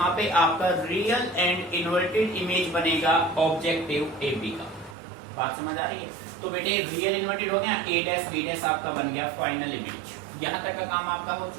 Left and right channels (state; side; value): drops out; left; at 5.0 s